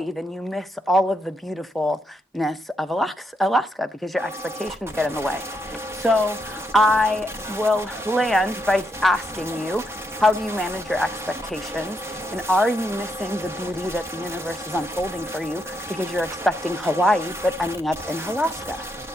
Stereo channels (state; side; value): normal; both; correlation 0.79